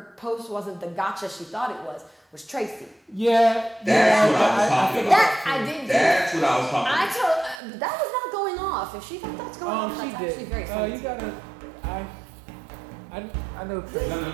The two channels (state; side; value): drops out; left; at 7.6 s